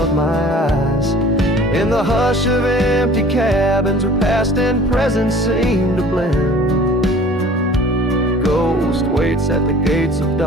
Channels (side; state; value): both; normal; correlation 0.47